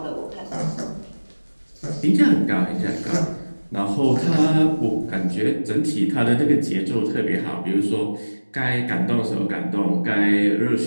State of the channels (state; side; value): inverted; both; correlation -1.00